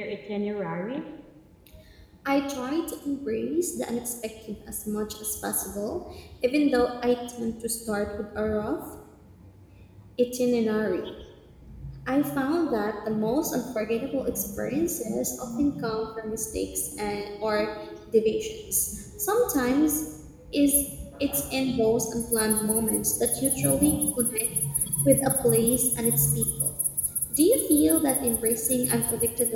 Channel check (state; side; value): identical; both; correlation 1.00